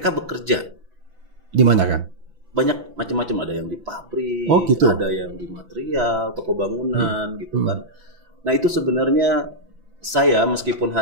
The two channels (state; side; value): late; left; 6.0 ms